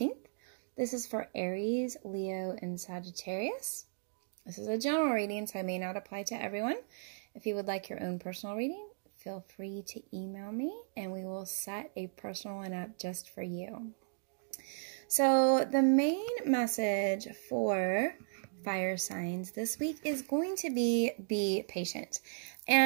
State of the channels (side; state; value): left; silent; digital silence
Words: This is for Aries, Leo, and Sagittarius. This is a general reading, so I may not apply to everyone. If you would like your own personal reading, feel free to email me and we will set a personal one up just for you. So the main message for fire signs this week is going to be patient.